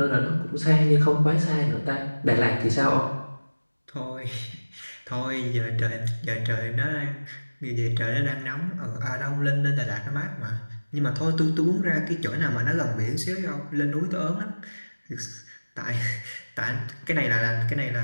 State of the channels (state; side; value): inverted; both; correlation -1.00